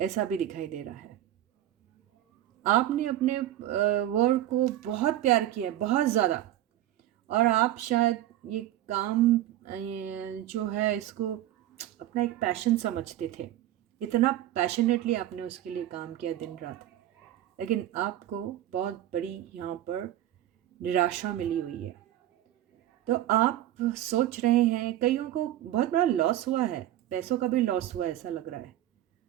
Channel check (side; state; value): left; quieter; 13.2 dB